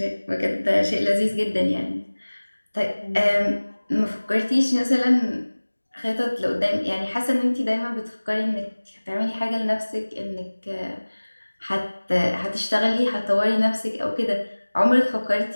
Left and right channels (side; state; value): both; inverted; correlation -1.00